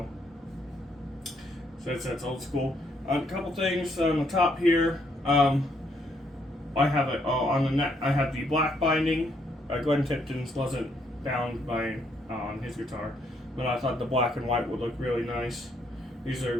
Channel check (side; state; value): both; normal; correlation 0.72